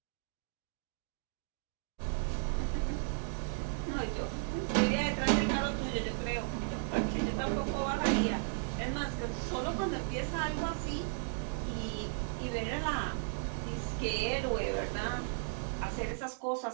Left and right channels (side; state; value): left; silent; digital silence